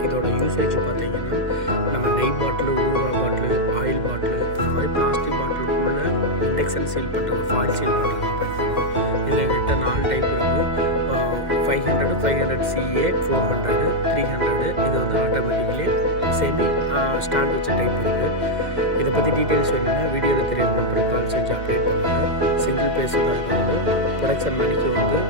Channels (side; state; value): left; late; 2.1 ms